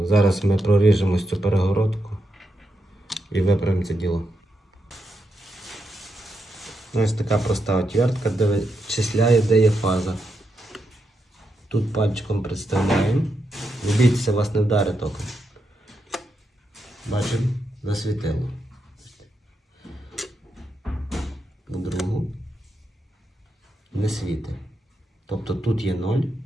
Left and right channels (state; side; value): normal; both; correlation 0.83